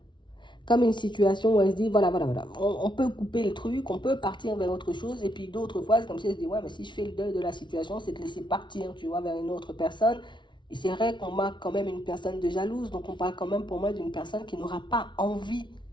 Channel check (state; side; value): late; right; 0.23 ms